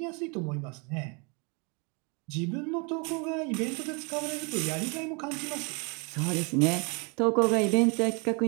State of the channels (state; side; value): quieter; left; 32.8 dB